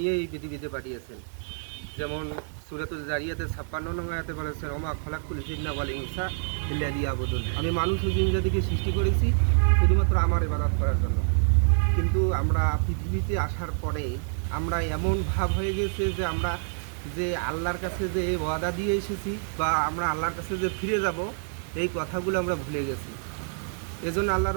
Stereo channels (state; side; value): silent; left; digital silence